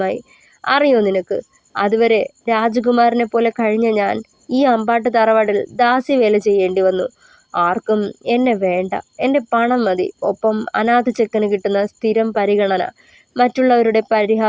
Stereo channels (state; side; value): identical; both; correlation 1.00